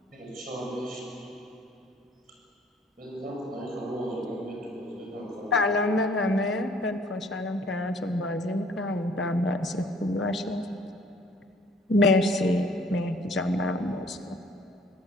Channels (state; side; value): normal; both; correlation 0.56